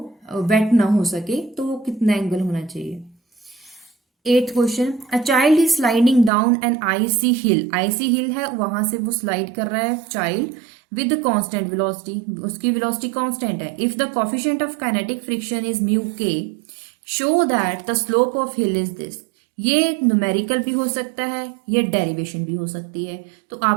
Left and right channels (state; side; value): drops out; left; at 6.3 s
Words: वेट ना हो सके, तो वो कितना एंगल होना चाहिए। 8th question, a child is sliding down an icy hill है, वहां से वो स्लाइड कर रहा है चाइल्ड विद कांस्टेंट वेलोसिटी, उसकी वेलोसिटी कांस्टेंट है। If the coefficient of kinetic friction is mu k, show that the slope of hill is this. ये न्यूमेरिकल भी हो सकता है, ये डेरिवेशन भी हो सकती है, तो